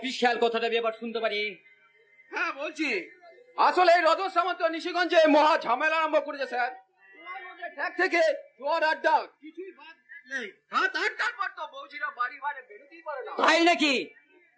কথাটা আমি এবার শুনতে পারি। হ্যাঁ বলছি, আসলে এই রজত সামন্ত নিশিগঞ্জে মহা ঝামেলা আরম্ভ করেছে স্যার। ঠেক থেকে জোয়ার আড্ডা কিছুই বাদ নেই। রাত 8টার পর তো বৌজিরা বাড়ি বাইরে বেরোতেই পারে না। তাই নাকি?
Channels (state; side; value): identical; both; correlation 1.00